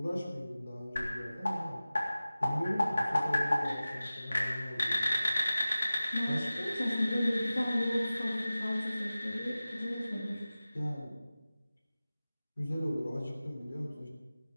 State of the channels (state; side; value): inverted; both; correlation -0.96